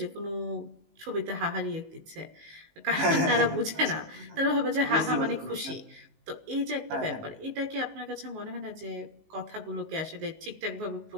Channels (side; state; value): left; late; 19 ms